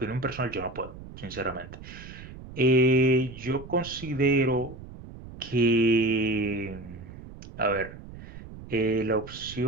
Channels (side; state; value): right; noise; rumble, 15 dB below the sound